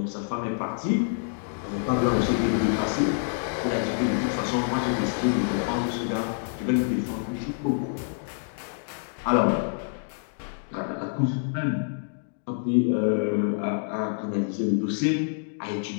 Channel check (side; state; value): right; silent; digital silence